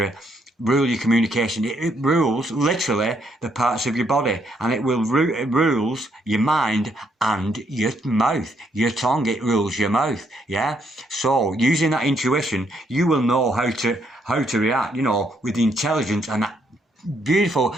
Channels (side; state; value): both; normal; correlation 0.73